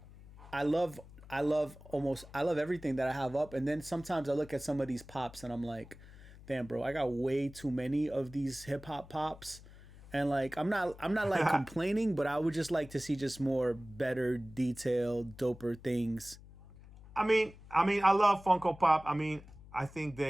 I love everything that I have up, and then sometimes I look at some of these pops and I'm like, damn, bro, I got way too many of these hip hop pops. And like I'm not like complaining, but I would just like to see just more better detailed, doper things. I love Funko Pop. I mean, I think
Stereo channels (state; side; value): noise; left; hum, 19 dB below the sound